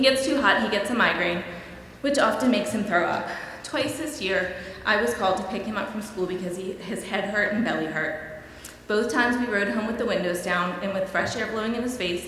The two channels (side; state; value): both; identical; correlation 1.00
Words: too hot, he gets a migraine, which often makes him throw up. Twice this year, I was called to pick him up from school because his head hurt and belly hurt. Both times we rode home with the windows down and with fresh air blowing in his face.